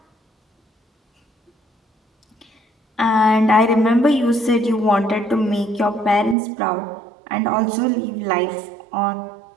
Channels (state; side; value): drops out; left; at 6.4 s